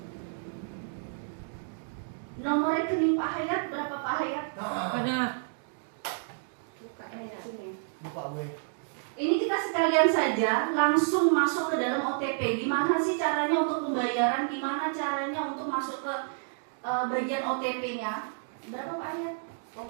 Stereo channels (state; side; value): silent; left; digital silence